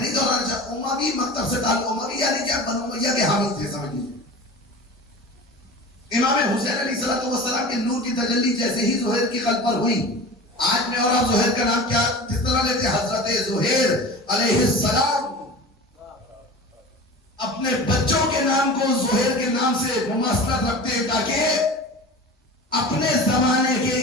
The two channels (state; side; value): normal; both; correlation 0.35